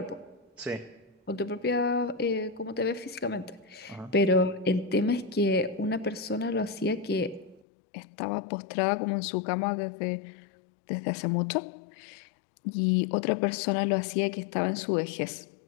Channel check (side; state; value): right; drops out; at 7.7 s